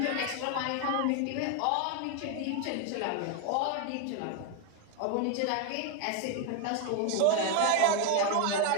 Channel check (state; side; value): different; both; correlation 0.01